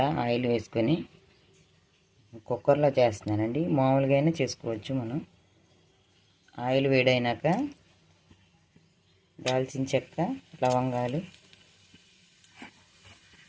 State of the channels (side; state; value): both; identical; correlation 1.00